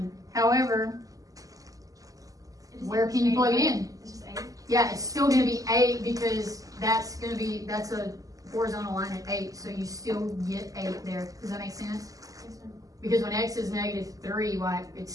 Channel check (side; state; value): left; late; 0.17 ms